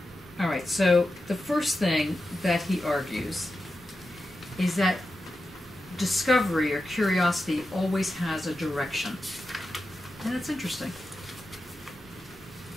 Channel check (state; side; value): normal; both; correlation 0.90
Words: All right, so the first thing that he argues is that discovery or curiosity always has a direction. And that's interesting.